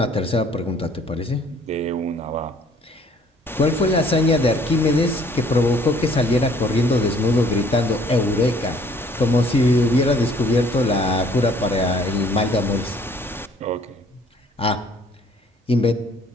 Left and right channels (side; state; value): both; normal; correlation 0.59